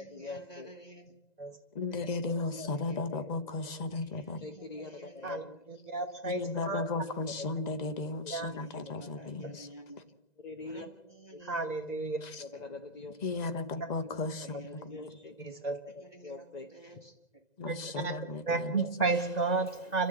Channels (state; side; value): late; right; 1.9 ms